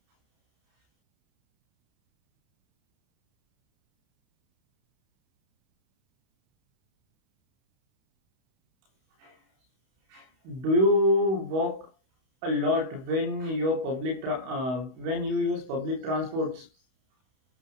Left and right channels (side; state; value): left; late; 31 ms